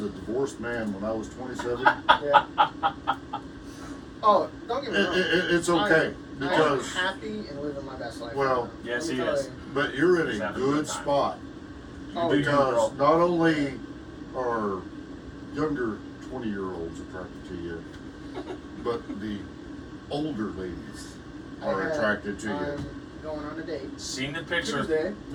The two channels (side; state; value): both; identical; correlation 1.00